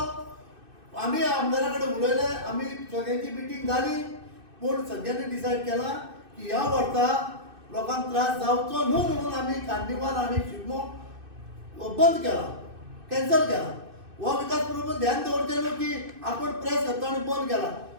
आमी आमदारा कडेन उलयले, आमी सगळ्यांची मिटींग जाली, पूण सगळ्यांनी डिसायड केला की ह्या वर्सा लोकांक त्रास जावचो न्हू म्हणून आमी कार्निवाल आनी शिगमो बंद केला, कॅन्सल केला. हो विकास प्रभू ध्यान दवरचें न्हू की आपूण प्रेस घेतलो आनी बंद केला.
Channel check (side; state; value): left; late; 2.6 ms